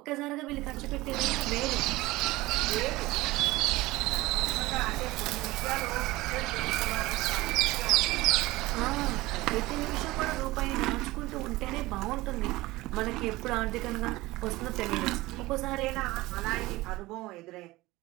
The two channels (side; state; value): left; quieter; 19.5 dB